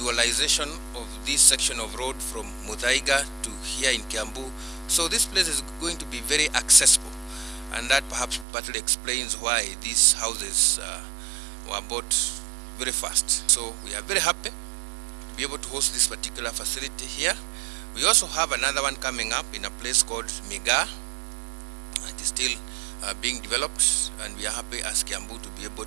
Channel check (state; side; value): drops out; left; at 8.5 s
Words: of this section of road from Muthaiga to here in Kiambu. So this place is going to be very accessible, and that perhaps partly explains why these houses were bought very fast. So we are very happy to be able to host this particular facility here. We also have another one coming up in a place called Mboga. It is still being developed, and we are happy as Kiambu to be able